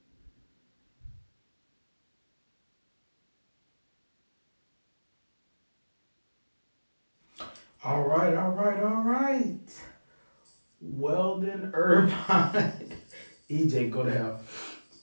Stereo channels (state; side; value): inverted; both; correlation -1.00